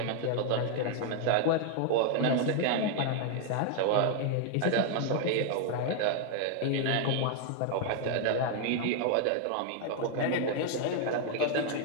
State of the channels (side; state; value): both; different; correlation 0.00